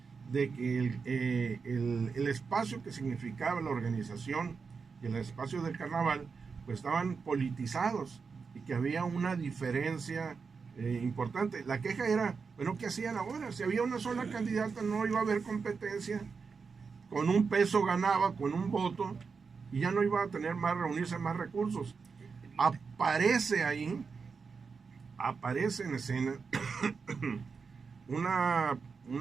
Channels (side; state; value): left; quieter; 5.2 dB